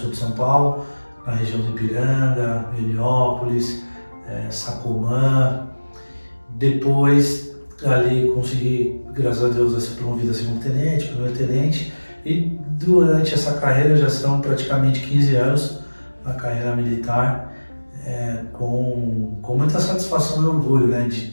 de São Paulo, na região de Ipiranga, Heliópolis, Sacomã. Depois ali consegui, graças a Deus, ser promovido a segundo tenente, primeiro tenente, e durante essa carreira já são praticamente 15 anos na carreira militar, com muita satisfação e orgulho, né, de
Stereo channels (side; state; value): both; inverted; correlation -1.00